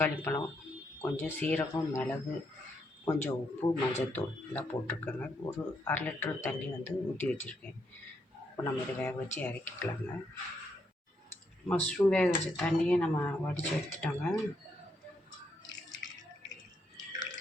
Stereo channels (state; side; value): normal; both; correlation 0.77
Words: பழம், கொஞ்சம் சீரகம், மிளகு, கொஞ்சம் உப்பு, மஞ்சள்தூள் எல்லாம் போட்டிருக்கேங்க. ஒரு 1/2 லிட்டர் தண்ணி வந்து ஊற்றி வச்சுருக்கேன். இப்போ நம்ம இதை வேக வச்சு இறக்கிக்கலாங்க. மஷ்ரூம் வேக வச்ச தண்ணியை நம்ம வடித்து எடுத்துட்டோங்க.